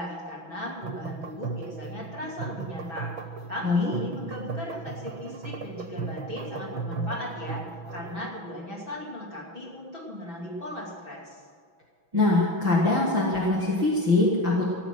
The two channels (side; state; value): left; late; 6.0 ms